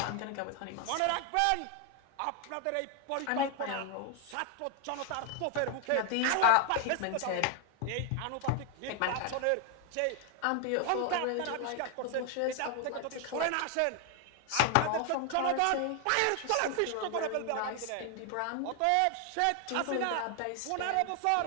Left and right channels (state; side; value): different; both; correlation 0.00